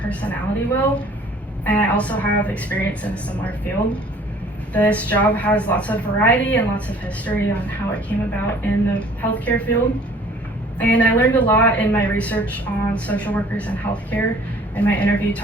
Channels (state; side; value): normal; both; correlation 0.53